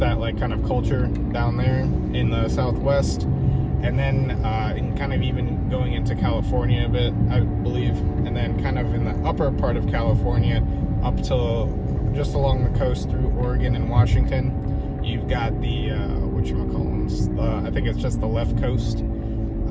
like kind of culture down there in the southwest. And then in kind of even going into California a bit, I believe, and then kind of in the upper part of California up to just along the coast through Oregon and Washington. You've got the whatchamacallits, I think it's just the left coast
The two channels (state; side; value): identical; both; correlation 1.00